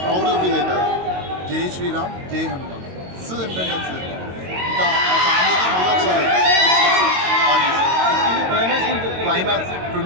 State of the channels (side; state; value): left; late; 22 ms